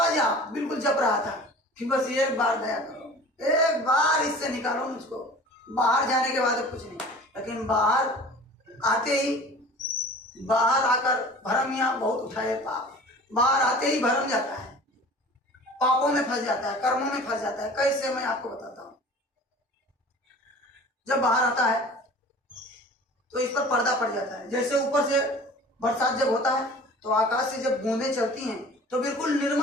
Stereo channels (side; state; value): both; normal; correlation 0.43